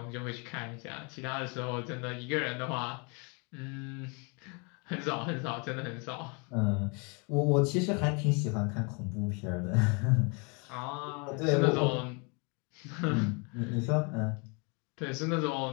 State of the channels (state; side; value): quieter; right; 33.1 dB